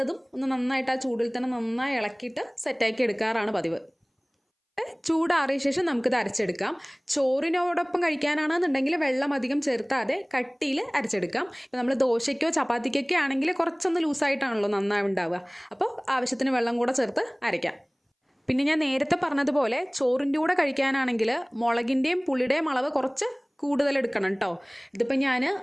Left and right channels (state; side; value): identical; both; correlation 1.00